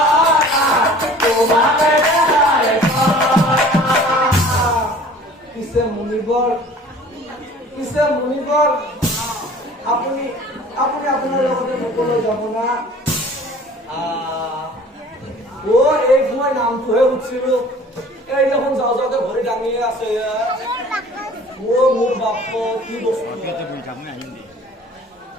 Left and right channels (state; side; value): normal; both; correlation 0.48